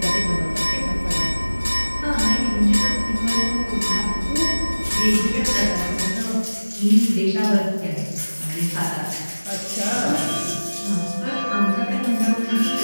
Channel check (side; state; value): both; inverted; correlation -1.00